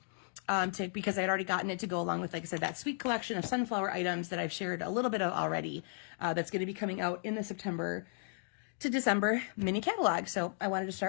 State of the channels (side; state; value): right; silent; digital silence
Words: Because I'd already gotten it to go along with, like I said, that sweet collection of sunflower items that I've shared a little bit of already, that's going to be coming out in the September to December mini catalog. So I wanted to